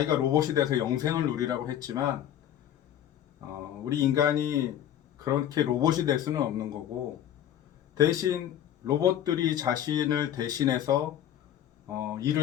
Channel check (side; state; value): right; quieter; 10.9 dB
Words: 로봇이 돼서 영생을 누리라고 했지만 우리 인간이 그렇게 로봇이 될 수는 없는 거고, 대신 로봇들이 자신을 대신해서